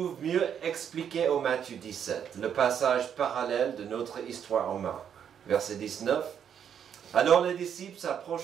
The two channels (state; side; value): quieter; left; 8.5 dB